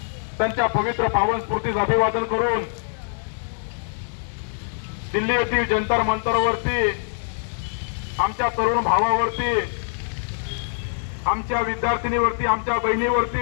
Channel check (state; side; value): silent; right; digital silence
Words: त्यांच्या पवित्र पावन स्फूर्तीस अभिवादन करून दिल्ली येथील जंतर मंतरवरती आमच्या तरुण भावावरती, आमच्या विद्यार्थिनीवरती, आमच्या